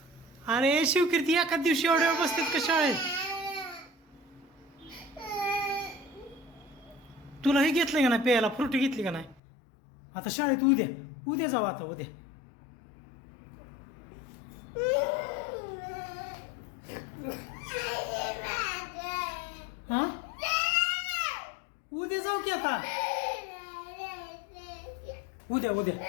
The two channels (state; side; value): drops out; right; at 9.4 s